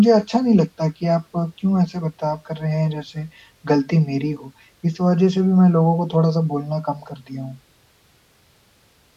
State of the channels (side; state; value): both; identical; correlation 1.00